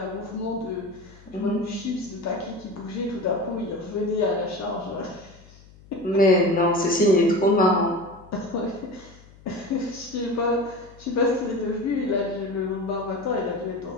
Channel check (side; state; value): left; noise; hum, 23 dB below the sound